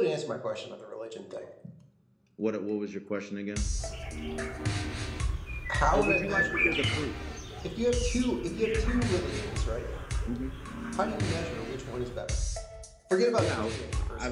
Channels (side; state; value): both; identical; correlation 1.00